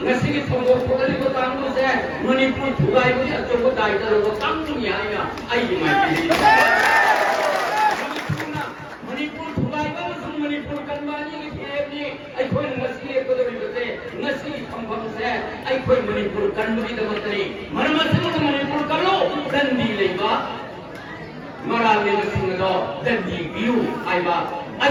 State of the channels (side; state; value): both; identical; correlation 1.00